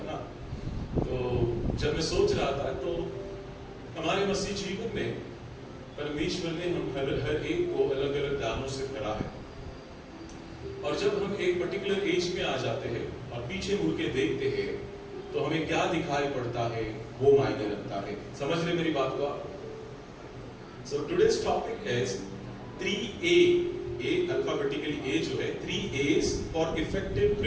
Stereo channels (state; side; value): identical; both; correlation 1.00